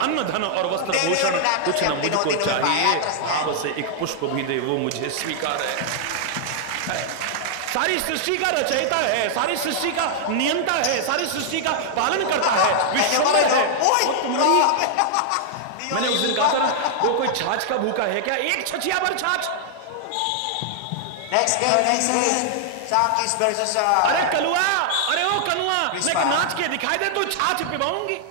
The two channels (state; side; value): different; both; correlation -0.01